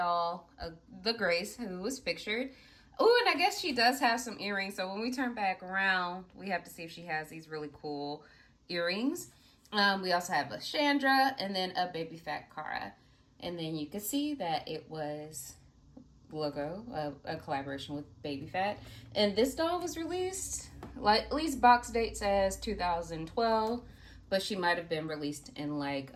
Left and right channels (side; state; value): both; identical; correlation 1.00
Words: the Grace, who was pictured. Oh, and I guess she does have some earrings. So when we turn back around, we have to see if she has these really cool earrings. We also have a Chandra and then a Baby Fat Cara. And then you can see that it was logo, a collaboration with Baby Fat. And this doll was released, like at least box date says 2012, but she might have been released in like